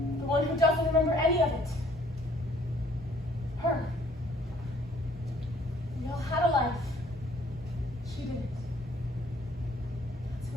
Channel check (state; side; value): normal; both; correlation 0.60